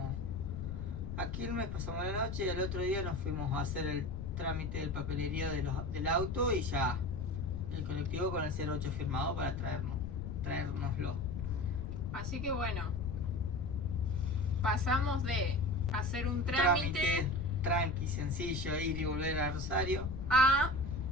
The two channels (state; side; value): noise; left; rumble, 6 dB below the sound